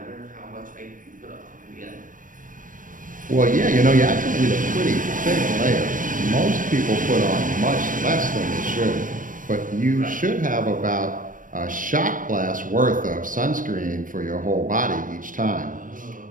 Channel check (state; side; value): late; left; 0.39 ms